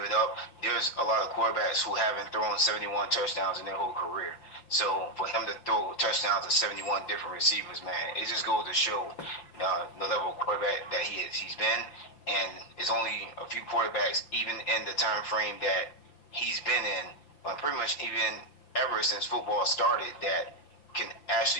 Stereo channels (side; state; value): right; late; 5.8 ms